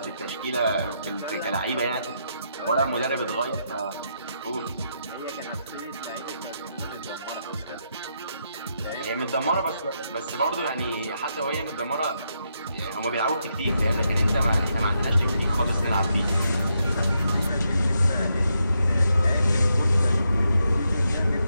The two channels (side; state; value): both; inverted; correlation -0.81